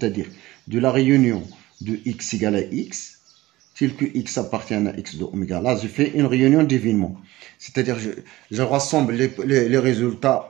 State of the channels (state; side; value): quieter; left; 18.0 dB